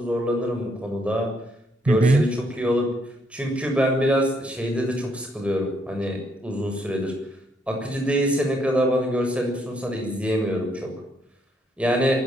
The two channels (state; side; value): normal; both; correlation 0.72